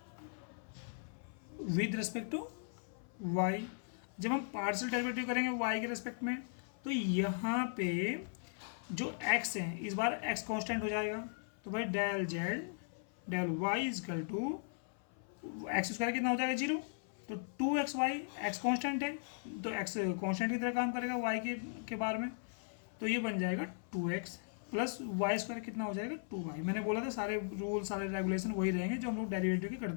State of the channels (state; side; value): silent; right; 52 dB below the other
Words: with respect to y। जब हम पार्शियल डेरिवेटिव करेंगे y के रिस्पेक्ट में, तो यहाँ पे जो x है इस बार x कांस्टेंट हो जाएगा। तो भाई del Z del y is equal to X square कितना हो जाएगा 0, तो 2xy x कांस्टेंट है तो x कांस्टेंट की तरह काम करेगा y के बार में, तो ये बन जाएगा 2x प्लस वाई स्क्वायर कितना हो जाएगा 2y। मैंने बोला था सारे रूल सारे रेगुलेशन वही रहेंगे जो हम लोग डेरिवेटिव के